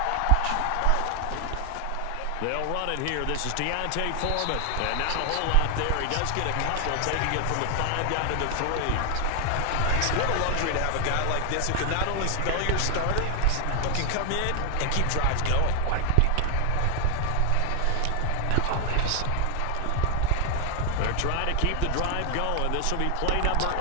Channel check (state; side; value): different; both; correlation 0.00